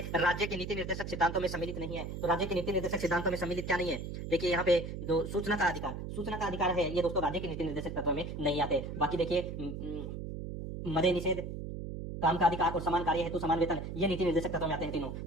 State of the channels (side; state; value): right; noise; hum, 7 dB below the sound